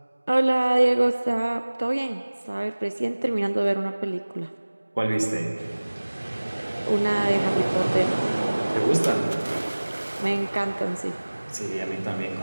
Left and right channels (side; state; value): both; inverted; correlation -1.00